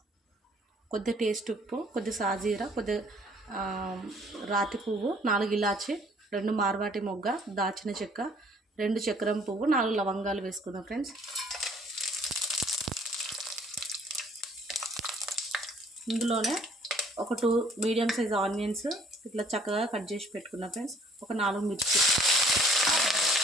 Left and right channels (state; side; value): normal; both; correlation 0.58